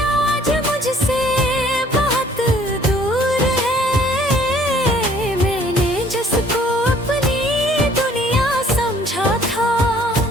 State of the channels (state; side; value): normal; both; correlation 0.58